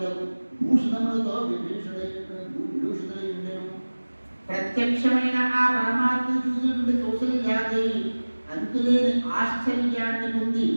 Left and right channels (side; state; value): both; inverted; correlation -1.00